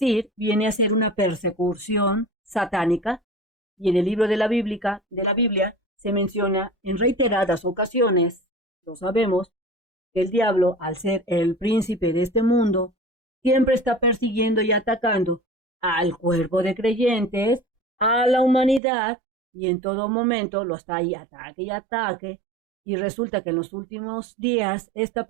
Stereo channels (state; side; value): drops out; left; at 18.8 s